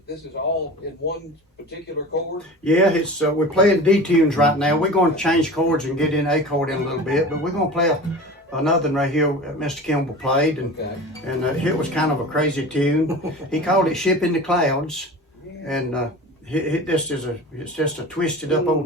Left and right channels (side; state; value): both; normal; correlation 0.35